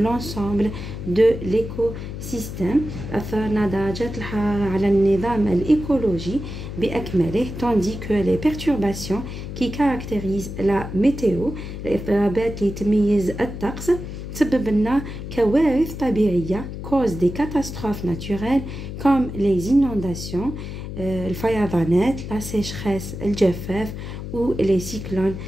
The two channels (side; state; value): left; noise; hum, 8 dB below the sound